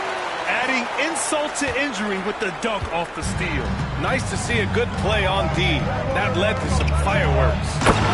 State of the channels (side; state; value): both; identical; correlation 1.00